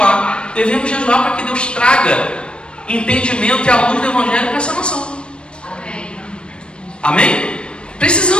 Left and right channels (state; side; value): late; right; 0.056 ms